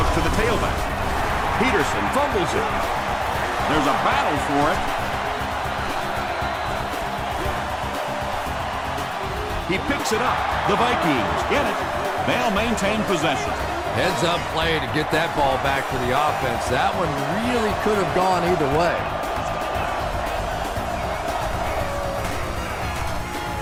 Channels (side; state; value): both; identical; correlation 1.00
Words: the tailback. Peterson fumbles it. There's a battle for it. He picks it up. The Vikings get it. They'll maintain possession. Heads up play to get that ball back for the offense. That one really could have gone either way.